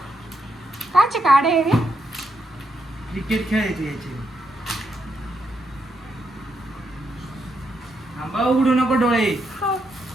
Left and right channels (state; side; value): normal; both; correlation 0.80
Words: काचे काढे आहे रे? क्रिकेट खेळायचे याचे. थांबा उघडू नको डोळे.